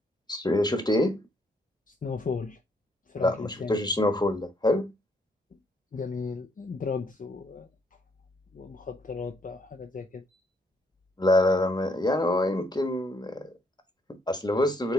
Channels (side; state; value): both; normal; correlation 0.71